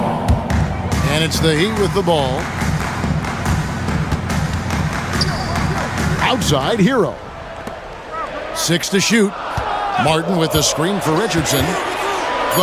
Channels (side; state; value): both; identical; correlation 1.00